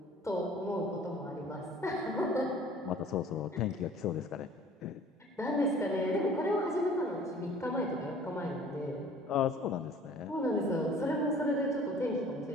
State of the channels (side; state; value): both; normal; correlation 0.49